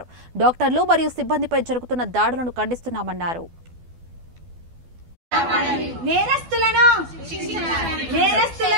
డాక్టర్లు మరియు సిబ్బందిపై జరుగుతున్న దాడులను ఖండిస్తున్నామన్నారు. నేరస్తులను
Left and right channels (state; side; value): late; left; 12 ms